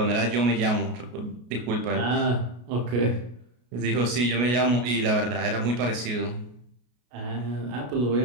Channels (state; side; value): late; left; 33 ms